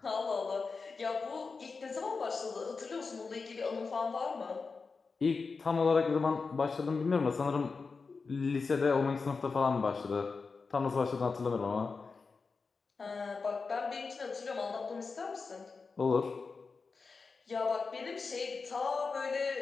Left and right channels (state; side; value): quieter; right; 4.6 dB